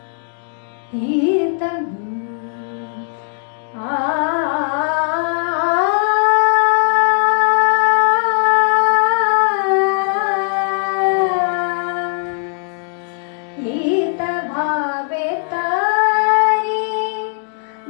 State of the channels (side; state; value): right; silent; 66 dB below the other